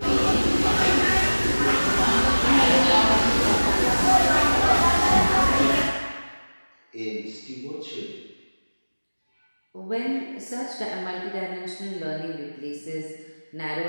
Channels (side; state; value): both; inverted; correlation -1.00